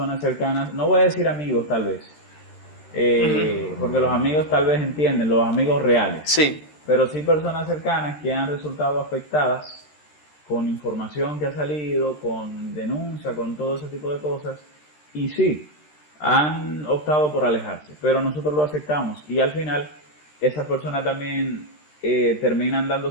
cercanas, no voy a decir amigos tal vez, porque los amigos tal vez entienden, los amigos reales, Sí. pero sí personas cercanas que han resultado afectadas con información que ha salido, con denuncia, con todo ese tipo de cosas. Y sí, han optado por alejarse, pero nosotros lo aceptamos y al final esas personas también terminan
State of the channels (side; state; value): right; late; 13 ms